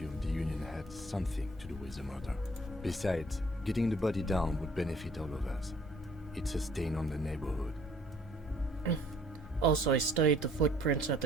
the Union had something to do with the murder. Besides, getting the body down would benefit all of us. It's a stain on the neighborhood. Also, I studied the footprints at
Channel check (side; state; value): both; normal; correlation 0.58